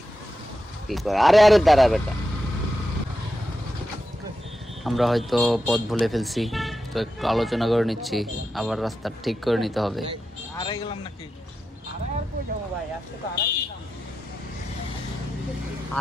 কি করে? আরে আরে দাঁড়া বেটা। আমরা হয়তো পথ ভুলে ফেলছি, তো একটু আলোচনা করে নিচ্ছি, আবার রাস্তা ঠিক করে নিতে হবে। আড়াই গেলাম নাকি?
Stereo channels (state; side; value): normal; both; correlation 0.89